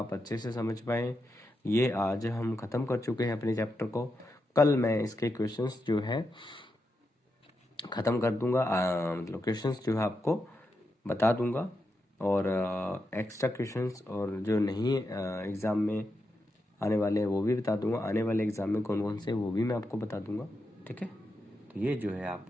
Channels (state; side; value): normal; both; correlation 0.86